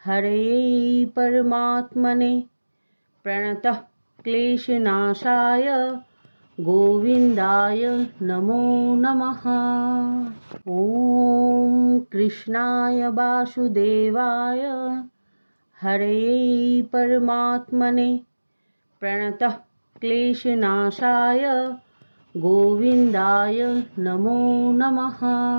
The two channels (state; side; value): inverted; both; correlation -1.00